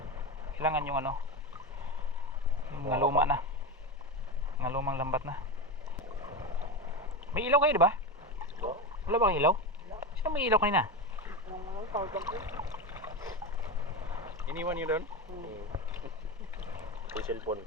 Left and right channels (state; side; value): normal; both; correlation 0.18